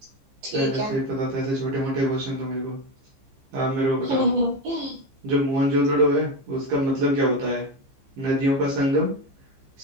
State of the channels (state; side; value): late; left; 15 ms